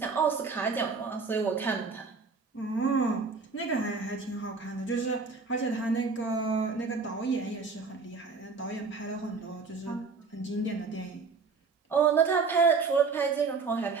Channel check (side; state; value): left; quieter; 4.6 dB